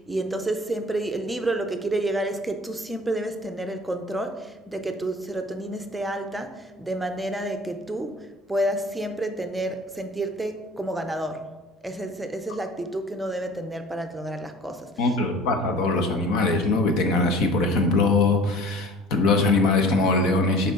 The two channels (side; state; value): both; normal; correlation 0.45